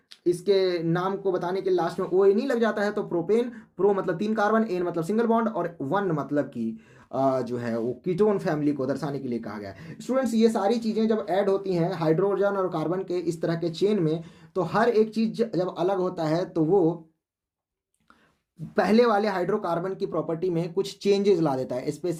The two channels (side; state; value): both; identical; correlation 1.00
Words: इसके नाम को बताने के लास्ट में OA नहीं लग जाता है, तो प्रोपेन, प्रो मतलब 3 कार्बन, एन मतलब सिंगल बॉन्ड और 1 मतलब कि जो है वो कीटोन फैमिली को दर्शाने के लिए कहा गया है। स्टूडेंट्स ये सारी चीज़ें जब ऐड होती हैं हाइड्रोजन और कार्बन के इस तरह के चेन में, तो हर एक चीज़ जब अलग होता है तो वो पहले वाले हाइड्रोकार्बन की प्रॉपर्टी में कुछ चेंजेस ला देता है,